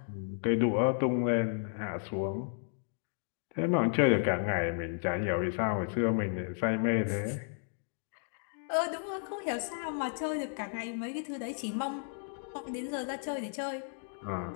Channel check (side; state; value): right; silent; digital silence